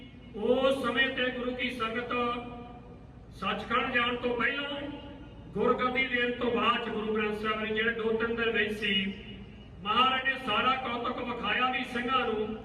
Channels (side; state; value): both; identical; correlation 1.00